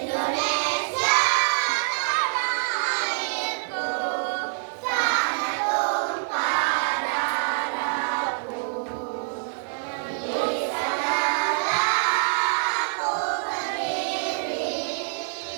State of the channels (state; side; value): silent; left; digital silence